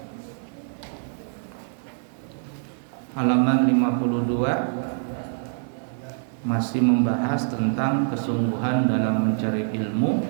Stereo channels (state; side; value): silent; left; 57 dB below the other